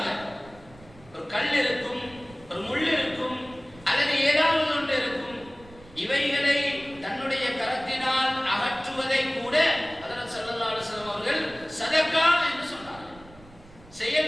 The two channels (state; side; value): noise; right; rumble, 22 dB below the sound